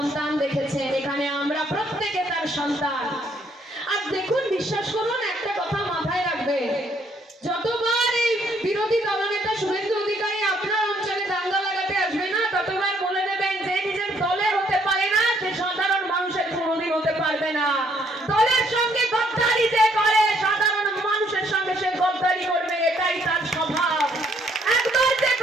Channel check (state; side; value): normal; both; correlation 0.68